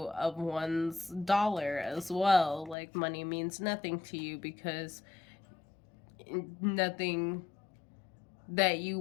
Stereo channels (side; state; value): right; drops out; at 2.8 s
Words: of one's dollar as well. Like, money means nothing to you because nothing that you